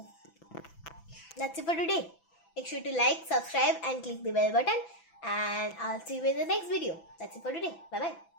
that's it for today. Make sure to like, subscribe and click the bell button, and I'll see you in the next video. That's it for today. Bye bye.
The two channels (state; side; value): late; right; 6.0 ms